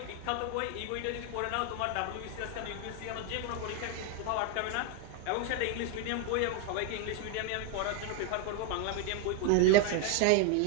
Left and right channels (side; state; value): both; different; correlation 0.01